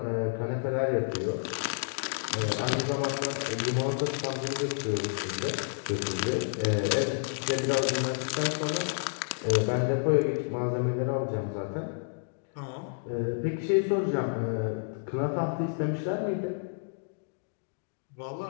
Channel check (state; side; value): silent; right; digital silence